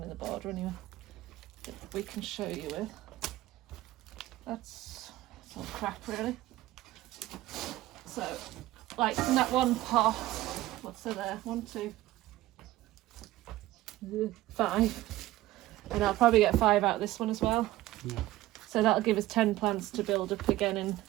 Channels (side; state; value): left; quieter; 16.4 dB